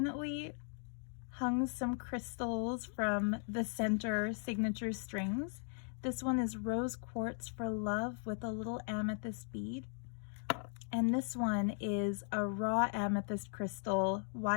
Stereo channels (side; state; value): right; silent; 52 dB below the other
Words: hung some crystals from the center signature strings. This one is rose quartz for love with a little amethyst bead. And this one is a raw amethyst crystal